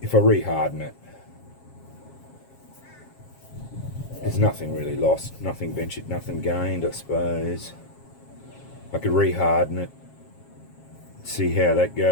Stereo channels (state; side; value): late; right; 7.4 ms